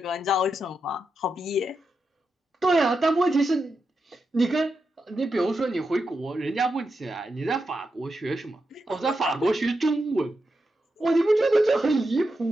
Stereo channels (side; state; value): both; normal; correlation 0.87